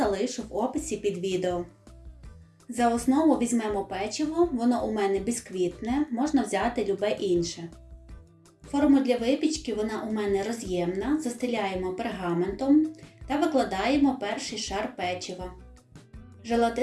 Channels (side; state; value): both; identical; correlation 1.00